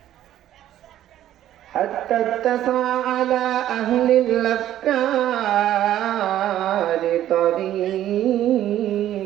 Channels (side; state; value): left; quieter; 12.3 dB